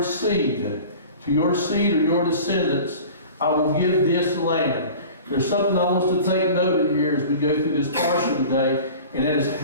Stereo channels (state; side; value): inverted; both; correlation -0.40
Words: seed, "to your seed or your descendants, I will give this land." There's something I want us to take note of here as we go through this Parsha today. And that is